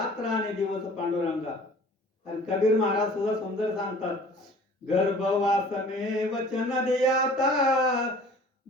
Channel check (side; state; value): both; normal; correlation 0.48